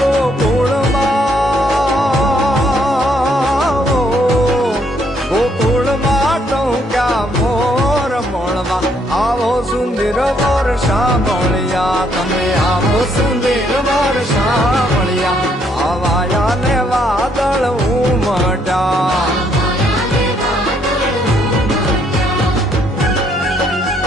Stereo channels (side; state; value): both; normal; correlation 0.70